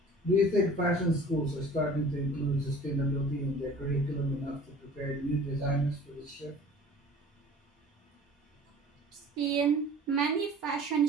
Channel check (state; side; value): normal; both; correlation 0.46